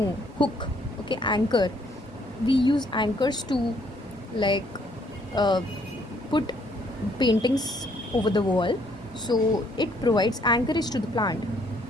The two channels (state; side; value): normal; both; correlation 0.66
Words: hook. Okay, anchor, we use anchors to like put paintings over the wall. So it provides anchorage to the plant,